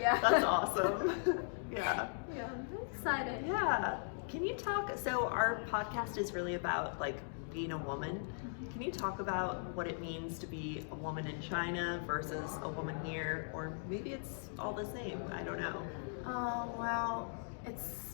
That's awesome. Yeah. Yeah, I'm very excited. Yeah. Can you talk? So our podcast is really about like being a woman. Can you talk about what it means to be a woman in China versus a woman here, or maybe it's all the same? I don't know. Well,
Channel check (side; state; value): right; silent; digital silence